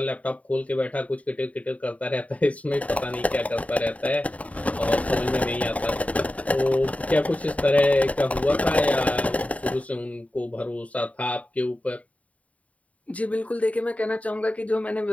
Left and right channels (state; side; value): late; right; 0.068 ms